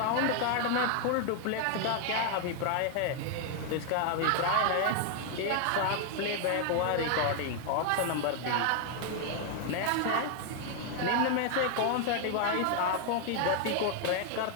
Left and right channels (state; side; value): different; both; correlation 0.00